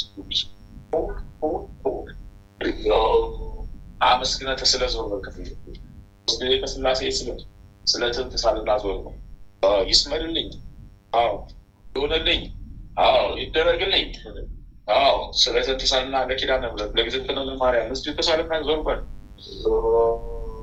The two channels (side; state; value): both; identical; correlation 1.00